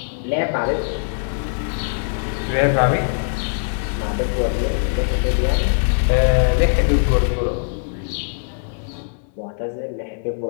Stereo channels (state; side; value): silent; right; digital silence